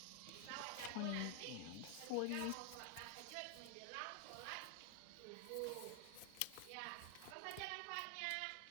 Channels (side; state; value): both; different; correlation 0.00